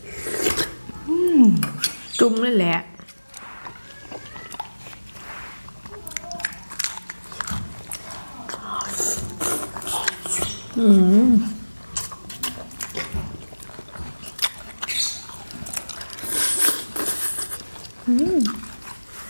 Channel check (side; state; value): both; inverted; correlation -1.00